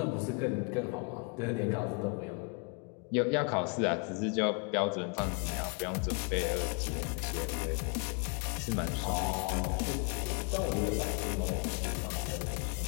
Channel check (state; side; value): quieter; right; 33.6 dB